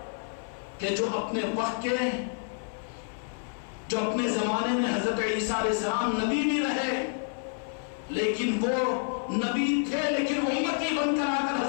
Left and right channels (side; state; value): right; silent; 59 dB below the other